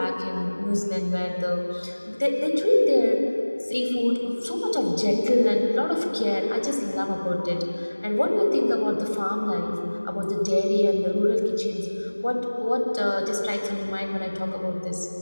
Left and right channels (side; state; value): both; inverted; correlation -1.00